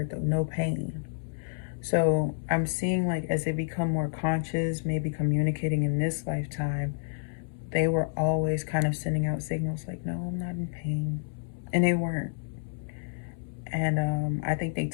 though. No pain. So I'm seeing like as they become more conscious, maybe communicating in this lifetime, they were always kind of sending out signals like, "No, I'm not in pain," and they weren't. And I think they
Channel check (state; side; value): silent; right; 58 dB below the other